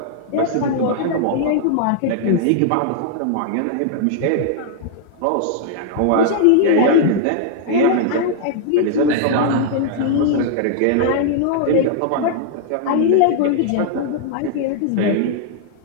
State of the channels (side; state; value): both; different; correlation -0.01